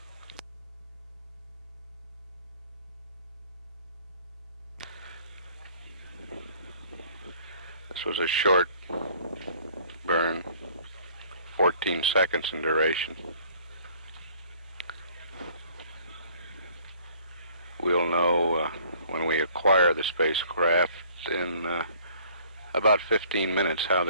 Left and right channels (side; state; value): both; inverted; correlation -0.56